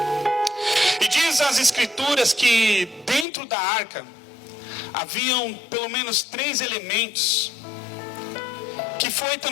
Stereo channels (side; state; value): right; drops out; at 3.2 s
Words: E diz as Escrituras que dentro da arca haviam pelo menos 3 elementos que foi